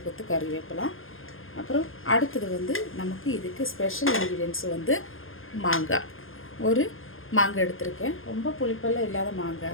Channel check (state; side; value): late; right; 0.60 ms